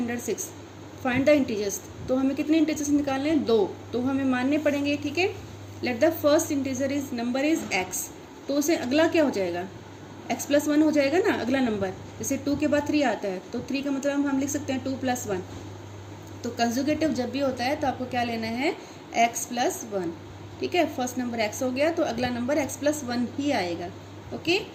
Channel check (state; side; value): identical; both; correlation 1.00